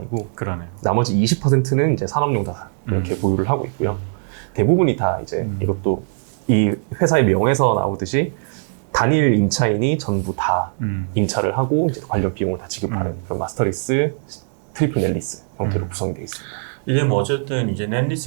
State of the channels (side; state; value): left; silent; digital silence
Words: 그러네요. 나머지 20%는 이제 산업용 자산 이렇게 보유를 하고 있고요. 대부분이 다 이제 이것도 이 회사의 명에서 나오듯이 단일 임차인이 전부 다 임차를 하고 이제 관련 비용을 다 지급하는 그런 마스터리스, 트리플 넷리스 형태로 구성이 되어 있습니다. 이게 뭐 어쨌든 이제